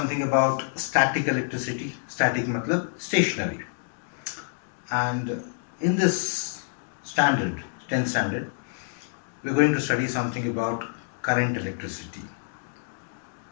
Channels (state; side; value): silent; right; digital silence